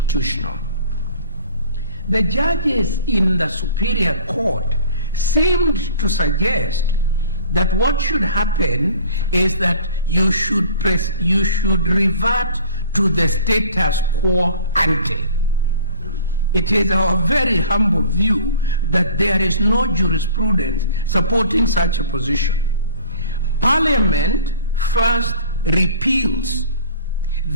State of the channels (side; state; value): both; inverted; correlation -0.47